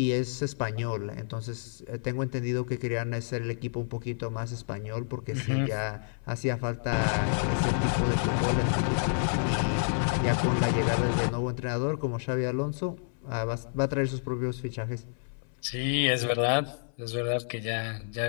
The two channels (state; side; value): silent; right; 56 dB below the other